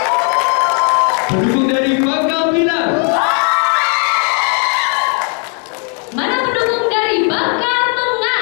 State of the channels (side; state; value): right; quieter; 37.7 dB